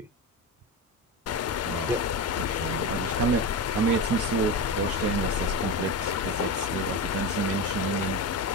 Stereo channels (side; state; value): both; normal; correlation 0.20